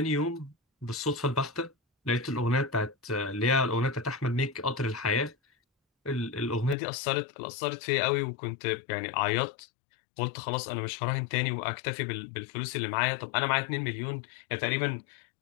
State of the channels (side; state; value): right; drops out; at 6.8 s